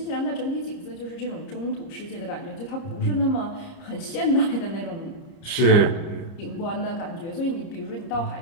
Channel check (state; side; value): late; right; 30 ms